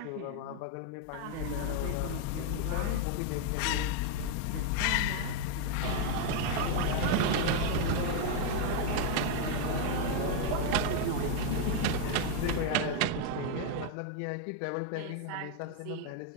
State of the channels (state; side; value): different; both; correlation 0.01